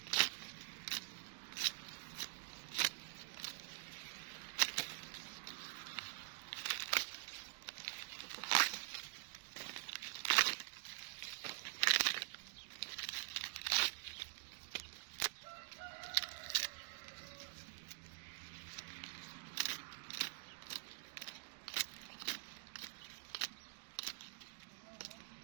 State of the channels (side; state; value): left; silent; digital silence